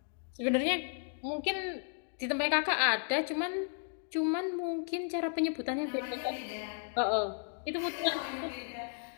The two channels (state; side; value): silent; right; 55 dB below the other